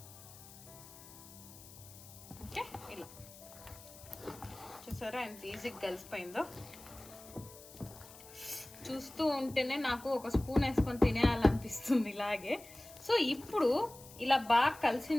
ఓకే, ఇలా చూసారా ఎంత ఈజీగా కలిసిపోయిందో. చూస్తూ ఉంటేనే నాకు ఒక స్పూన్ వేసుకొని తినేయాలనిపిస్తుంది ఇలాగే. సో ఇప్పుడు ఇలా బాగా కలిసిన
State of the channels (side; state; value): left; noise; hiss, 18 dB below the sound